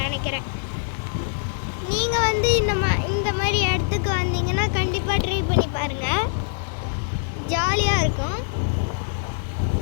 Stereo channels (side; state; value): right; silent; 63 dB below the other